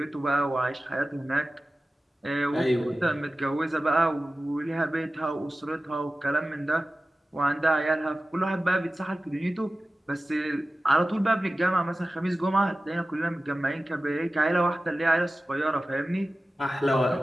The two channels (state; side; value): normal; both; correlation 0.95